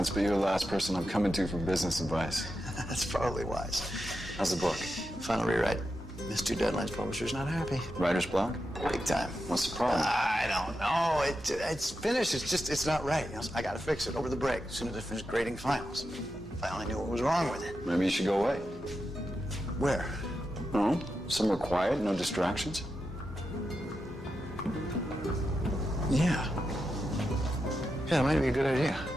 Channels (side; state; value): both; normal; correlation 0.88